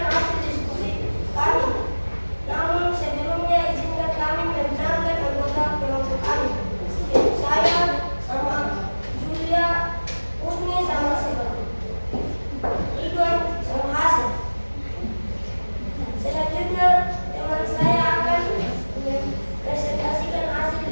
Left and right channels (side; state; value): both; inverted; correlation -1.00